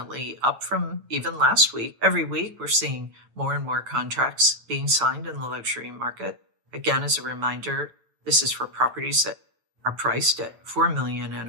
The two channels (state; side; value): late; left; 9.1 ms